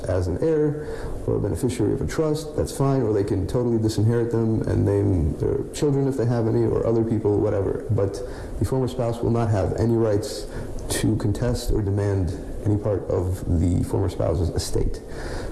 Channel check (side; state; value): both; identical; correlation 1.00